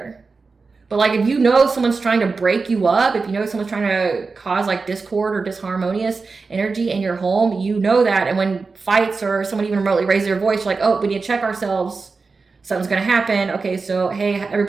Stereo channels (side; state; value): left; quieter; 4.3 dB